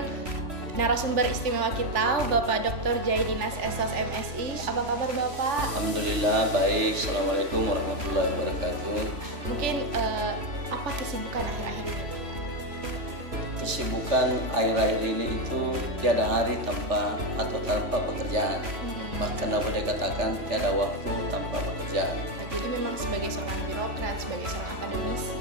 narasumber istimewa kita, Bapak Dr. Jaidinas Esos MSI. Apa kabar Bapak? Alhamdulillah baik. Assalamualaikum warahmatullahi wabarakatuh. Mungkin apa kesibukan akhir-akhir ini? Kesibukan akhir-akhir ini itu tiada hari tanpa pekerjaan. Bahkan aku boleh katakan tiada waktu tanpa pekerjaan. Jadi memang sebagai seorang birokrat, sebagai seorang akademisi,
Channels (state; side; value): late; left; 3.4 ms